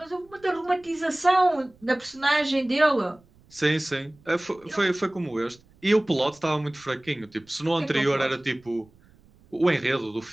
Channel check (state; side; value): noise; right; rumble, 29 dB below the sound